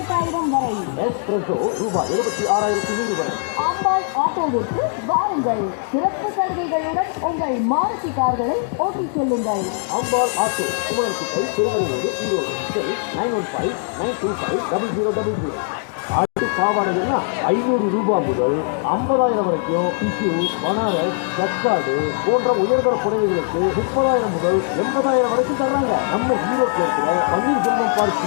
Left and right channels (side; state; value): right; silent; 65 dB below the other